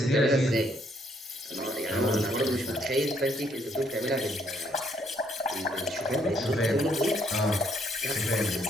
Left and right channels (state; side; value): normal; both; correlation 0.70